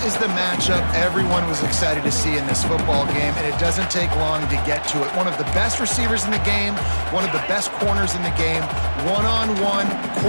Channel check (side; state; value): both; inverted; correlation -1.00